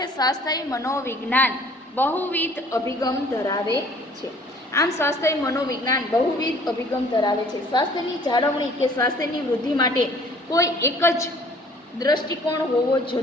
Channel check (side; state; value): both; normal; correlation 0.54